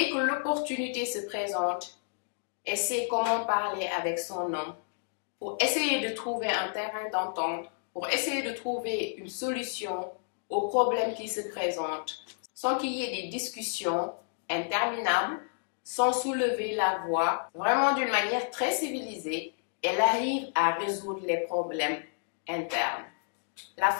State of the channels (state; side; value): silent; right; digital silence